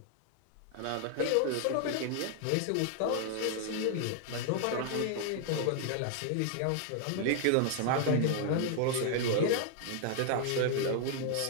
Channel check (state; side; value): different; both; correlation 0.00